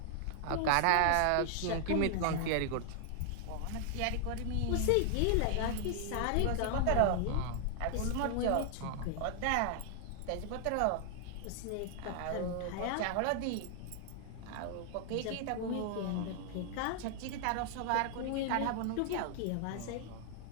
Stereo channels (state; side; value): different; both; correlation 0.00